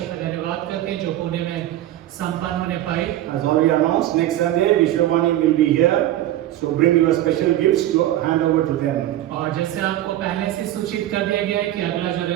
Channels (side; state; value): left; quieter; 13.6 dB